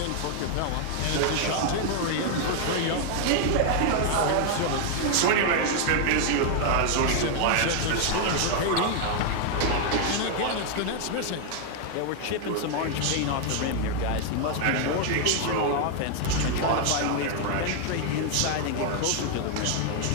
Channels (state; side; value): different; both; correlation 0.00